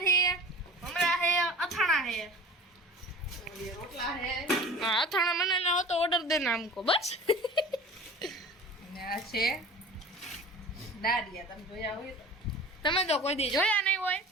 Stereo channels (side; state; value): both; normal; correlation 0.40